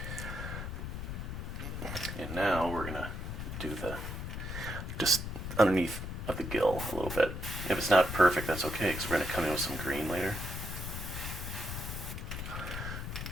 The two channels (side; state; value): left; noise; rumble, 5 dB below the sound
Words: And now we're gonna do just underneath of the gill a little bit. If it's not perfect, that's okay, because we're gonna come in with some green later.